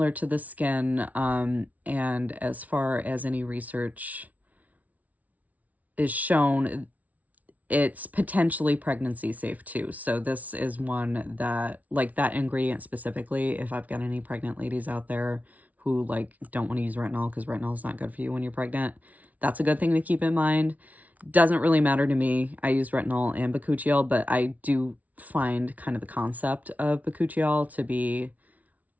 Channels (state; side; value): late; left; 0.072 ms